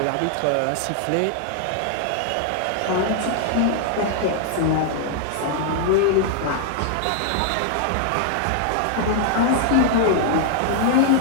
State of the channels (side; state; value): both; different; correlation 0.00